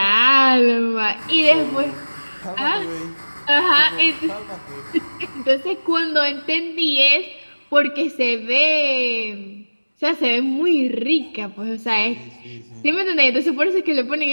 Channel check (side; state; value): both; inverted; correlation -1.00